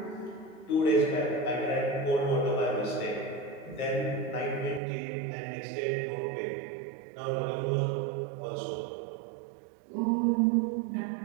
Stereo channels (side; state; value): left; drops out; at 4.8 s